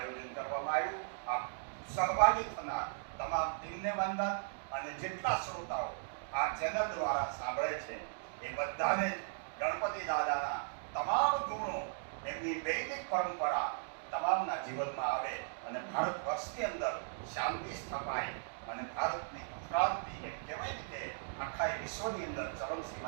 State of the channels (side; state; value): left; silent; digital silence